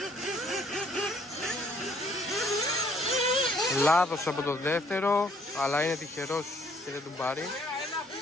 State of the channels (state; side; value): normal; both; correlation 0.63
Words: Λάθος από το δεύτερο, αλλά είναι τυχερός και δεν τον πάρει.